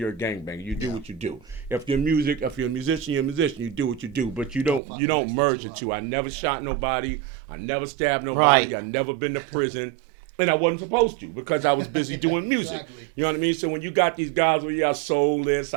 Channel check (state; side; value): drops out; left; at 4.8 s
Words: a gangbanger. You do what you do. If you're a musician, you're a musician. You do what you do, but you don't merge the two. I never shot nobody. I never stabbed nobody. I never been to prison. And I wasn't supposed to because I was busy doing music. Exactly. You know what I mean? So when you got these guys where I sold this,